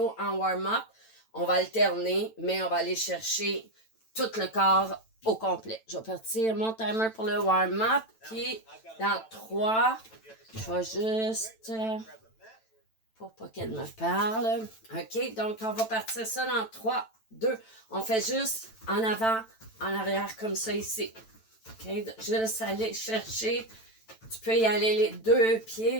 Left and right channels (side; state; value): right; late; 9.0 ms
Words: en warm-up. On va alterner, mais on va aller chercher tout le corps au complet. Je vais partir mon timer pour le warm-up, puis dans 3, je vais juste... pour pas qu'elle me parle. OK, donc on va partir ça dans 3, 2. On fait juste en avant, en arrière, comme ça ici. OK, juste aller chercher. Tu peux y aller les 2